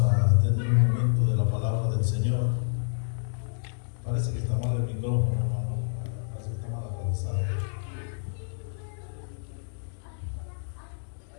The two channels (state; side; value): silent; right; digital silence